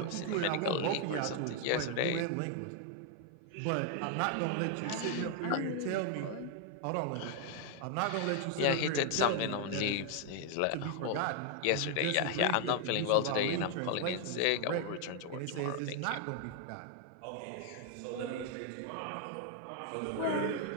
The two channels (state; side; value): different; both; correlation 0.00